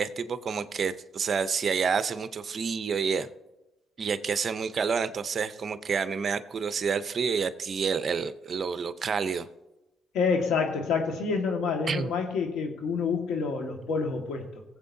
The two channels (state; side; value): normal; both; correlation 0.70